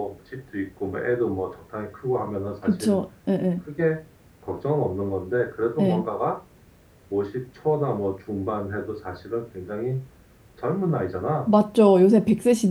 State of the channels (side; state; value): both; identical; correlation 1.00